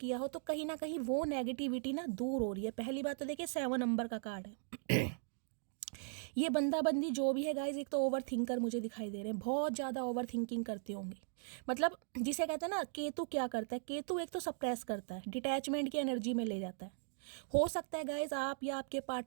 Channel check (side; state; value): left; silent; digital silence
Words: हो, तो कहीं ना कहीं वो नेगेटिविटी ना दूर हो रही है। पहली बात तो देखिए 7 नंबर का कार्ड है। ये बंदा बंदी जो भी है गाइज, एक तो ओवर थिंकर मुझे दिखाई दे रहे हैं, बहुत ज़्यादा ओवर थिंकिंग करते होंगे। मतलब जिसे कहते हैं ना, केतु क्या करता है, केतु एक तो सप्रेस करता है, डिटैचमेंट की एनर्जी में ले जाता है। हो सकता है गाइज आप या आपके